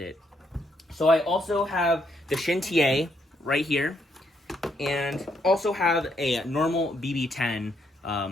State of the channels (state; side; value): normal; both; correlation 0.74